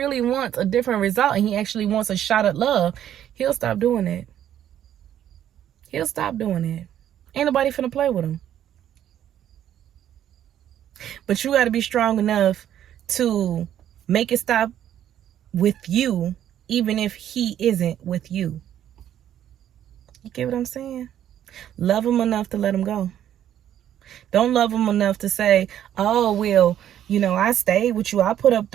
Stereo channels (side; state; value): left; quieter; 10.8 dB